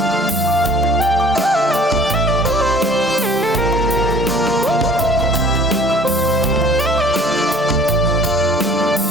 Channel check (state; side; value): normal; both; correlation 0.51